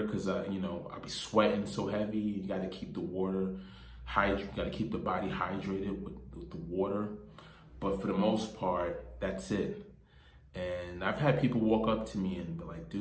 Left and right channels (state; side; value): identical; both; correlation 1.00